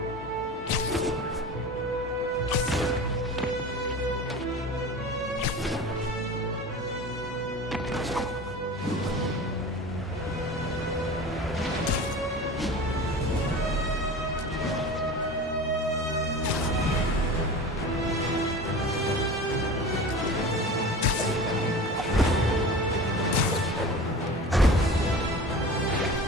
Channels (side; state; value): both; normal; correlation 0.35